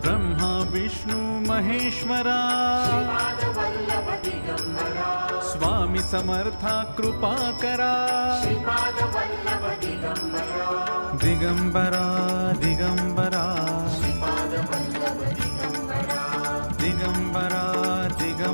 ब्रह्मा विष्णु महेश्वरा श्रीपादवल्लभ दिगंबरा स्वामी समर्था कृपा करा श्रीपादवल्लभ दिगंबरा दिगंबरा दिगंबरा श्रीपादवल्लभ दिगंबरा दिगंबरा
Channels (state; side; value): inverted; both; correlation -1.00